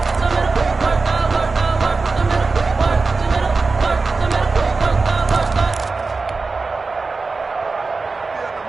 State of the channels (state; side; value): quieter; left; 4.0 dB